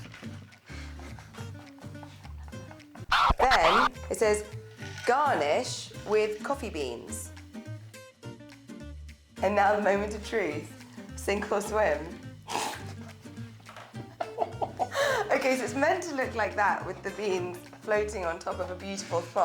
Then it says garnish with coffee beans. And now the moment of truth. Sink or swim. Okay, so it's meant to look like that with the beans floating on top of a beautiful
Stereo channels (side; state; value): both; identical; correlation 1.00